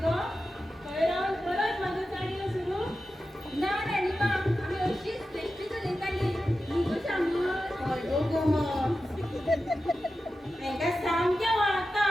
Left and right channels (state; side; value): normal; both; correlation 0.92